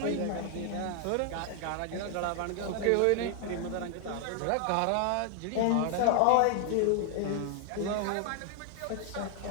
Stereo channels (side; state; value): both; different; correlation 0.00